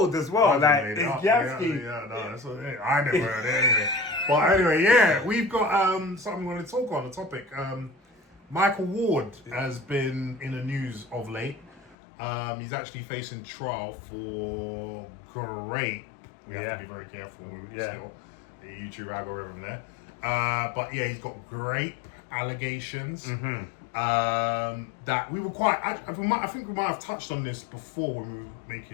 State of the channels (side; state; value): right; drops out; at 12.0 s